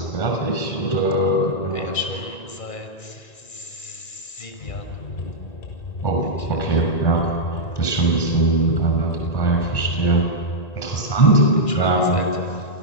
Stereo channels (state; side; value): late; right; 1.9 ms